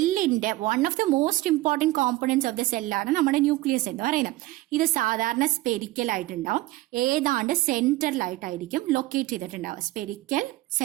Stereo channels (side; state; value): left; quieter; 18.4 dB